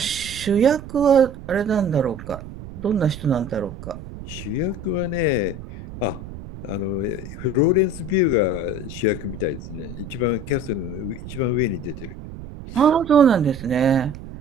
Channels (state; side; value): noise; right; rumble, 12 dB below the sound